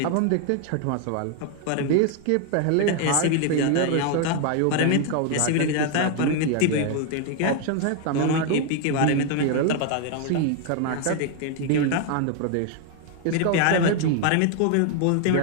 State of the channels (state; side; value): different; both; correlation 0.00